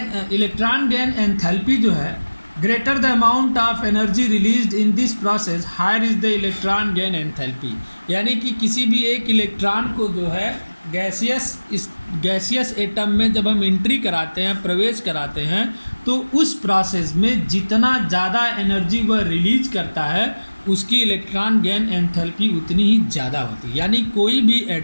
इलेक्ट्रॉन गेन एंथैल्पी जो है, greater the amount of energy released in this process higher is the electron gain enthalpy. यानी कि किसी भी एक इलेक्ट्रॉन को जो है गैसियस एटम में जब हम एंट्री कराते हैं, प्रवेश कराते हैं, तो उस प्रोसेस में जितना ज़्यादा एनर्जी वह रिलीज करता है उसकी इलेक्ट्रॉन गेन एंथैल्पी उतनी ही ज़्यादा होती है। यानी कोई भी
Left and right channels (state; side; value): inverted; both; correlation -1.00